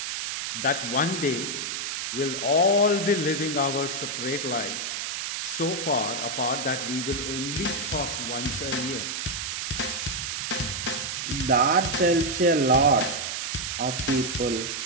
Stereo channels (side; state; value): right; noise; hiss, 3 dB below the sound